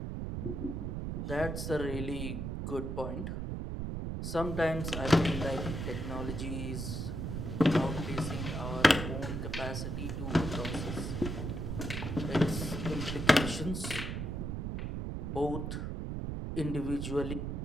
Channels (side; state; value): right; noise; rumble, 3 dB below the sound